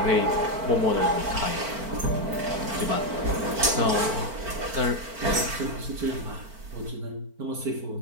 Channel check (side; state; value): left; late; 4.5 ms